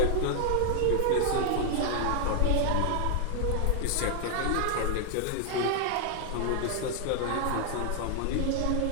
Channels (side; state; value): both; different; correlation 0.00